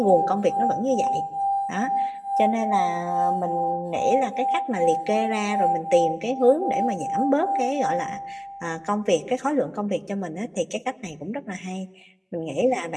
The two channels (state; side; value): identical; both; correlation 1.00